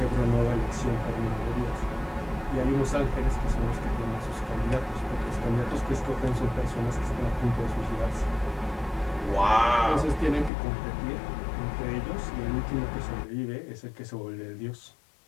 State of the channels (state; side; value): drops out; right; at 10.5 s